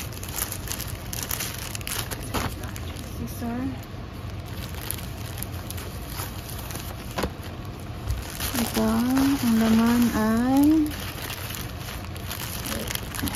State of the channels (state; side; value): identical; both; correlation 1.00